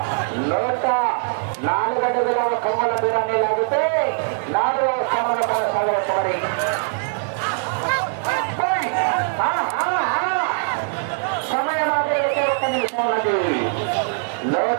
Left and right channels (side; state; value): left; silent; 65 dB below the other